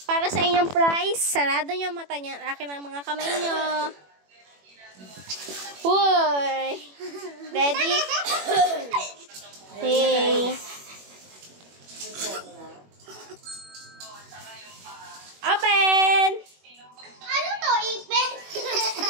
Para sa inyong prize, sarado niyo ang mata niya. Akin ang mga kamay niyo. Uy! Ready? Okay. Open! Ano to, ipin?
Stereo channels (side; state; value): left; late; 21 ms